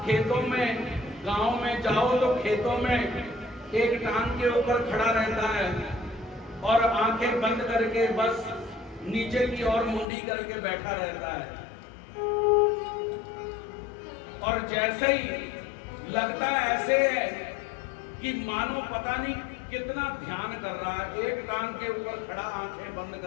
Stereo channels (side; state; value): right; drops out; at 10.1 s